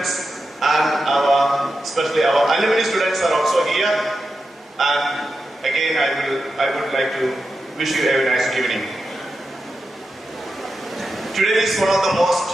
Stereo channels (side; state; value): both; normal; correlation 0.90